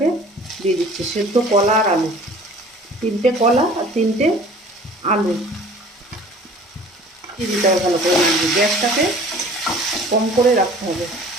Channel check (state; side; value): normal; both; correlation 0.48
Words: দিয়ে দিচ্ছি। সেদ্ধ কলা আর আলু, তিনটে কলা আর তিনটে আলু দিয়ে দিতে হবে ভালো করে। গ্যাসটাকে কম করে রাখতে হবে।